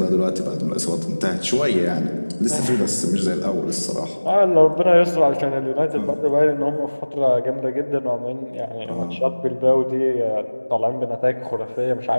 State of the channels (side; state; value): both; inverted; correlation -1.00